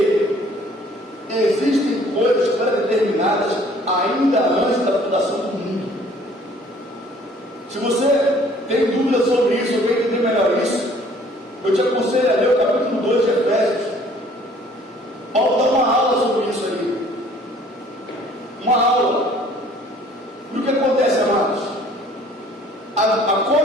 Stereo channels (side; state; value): both; normal; correlation 0.56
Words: existem coisas pré-determinadas ainda antes da fundação do mundo. Se você tem dúvidas sobre isso, ou quer entender melhor isso, eu te aconselho a ler o capítulo 2 de Efésios. Paulo dá uma aula sobre isso ali. Uma aula. E o que acontece, amados? A